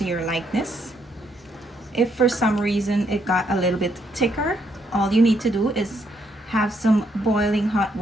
your likeness. If for some reason it got a little bit thicker, all you need to do is have some boiling hot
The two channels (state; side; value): normal; both; correlation 0.74